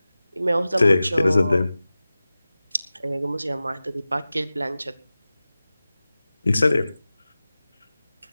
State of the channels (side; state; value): both; inverted; correlation -0.96